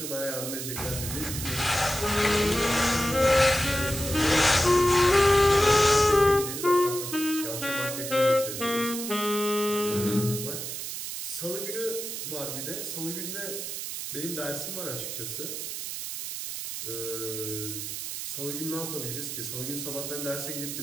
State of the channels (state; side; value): noise; right; hiss, 6 dB below the sound